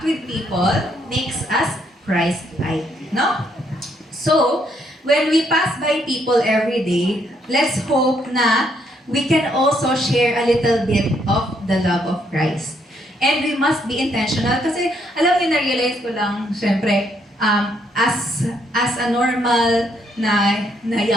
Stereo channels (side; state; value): both; normal; correlation 0.72